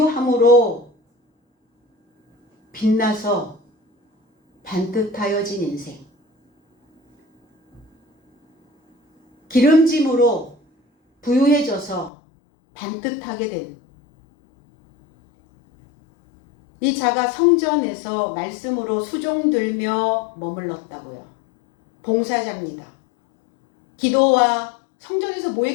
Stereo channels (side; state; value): right; drops out; at 12.1 s